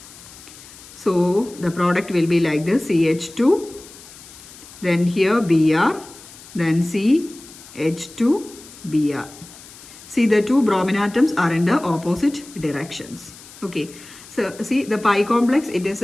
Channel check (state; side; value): noise; left; hiss, 19 dB below the sound